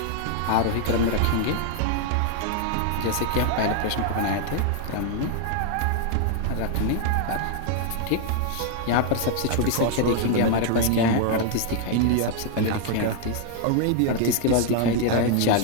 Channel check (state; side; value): different; both; correlation 0.00